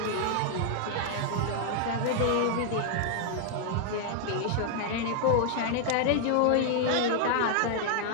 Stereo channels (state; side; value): different; both; correlation 0.00